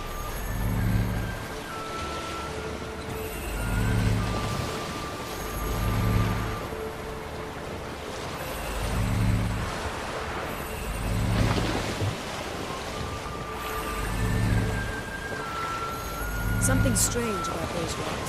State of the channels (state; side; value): identical; both; correlation 1.00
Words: Something strange about those